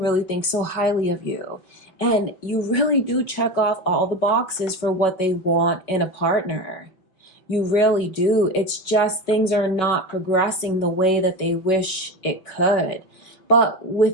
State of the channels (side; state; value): right; late; 5.4 ms